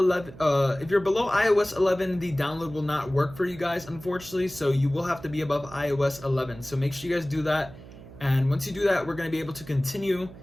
if you're below iOS 11, the download will not work for you guys, unfortunately. So you will have to be above iOS 11. So make sure you guys do that. And once you do that, we're going to be able to continue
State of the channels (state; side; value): noise; right; hum, 18 dB below the sound